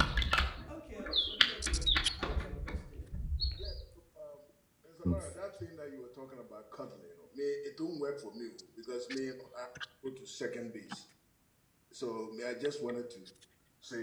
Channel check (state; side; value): identical; both; correlation 1.00